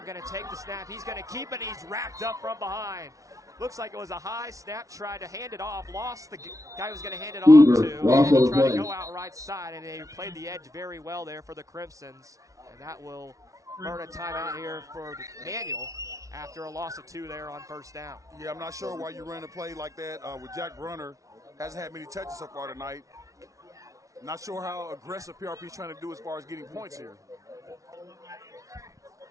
going to take the snap. He's going to keep it. He's wrapped up from behind. Looks like it was a high snap. Tried to hand it off. Lost the guy who was going to hand it off to. And he tried to go out right side, and they played the edge very well there for the Crimsons. And that will earn a timeout here for the Manual after a loss of 2 there on first down. Yeah, I'm not sure why you ran a play like that with Jack Brunner. Hasn't had many touches so far tonight. Not sure how aggressive PRP is trying to do as far as getting points here.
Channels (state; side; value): late; left; 0.16 ms